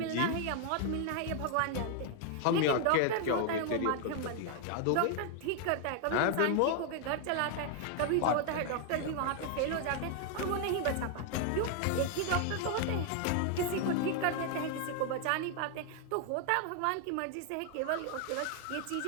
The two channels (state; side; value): different; both; correlation 0.00